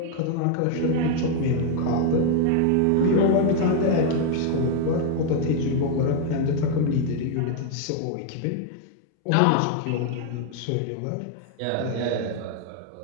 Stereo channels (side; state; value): both; different; correlation 0.00